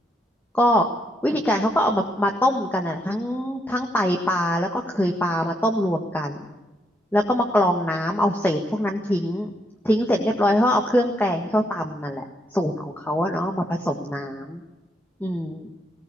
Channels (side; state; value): both; normal; correlation 0.76